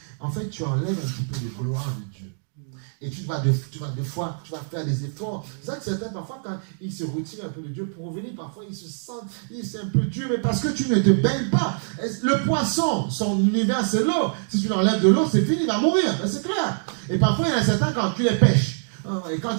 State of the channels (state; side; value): silent; left; digital silence